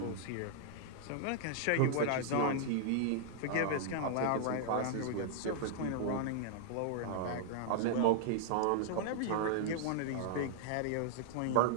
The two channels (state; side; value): different; both; correlation -0.01